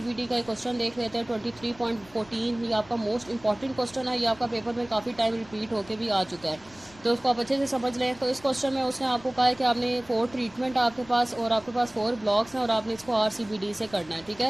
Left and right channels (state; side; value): noise; left; rumble, 24 dB below the sound